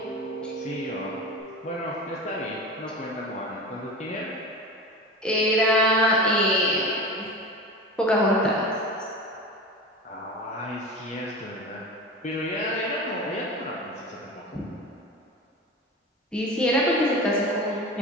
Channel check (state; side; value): normal; both; correlation 0.30